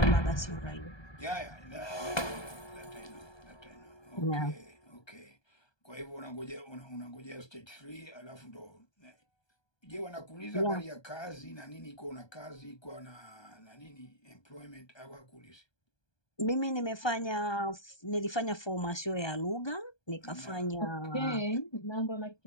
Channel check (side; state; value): right; late; 1.2 ms